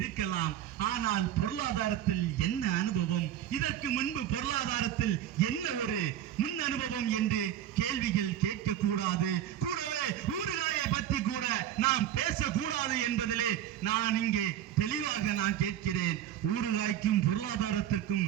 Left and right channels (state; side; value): quieter; left; 11.1 dB